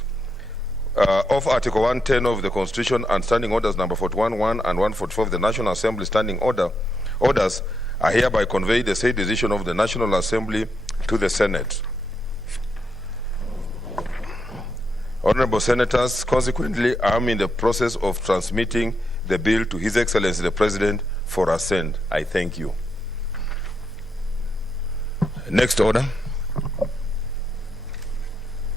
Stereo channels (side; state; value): both; normal; correlation 0.82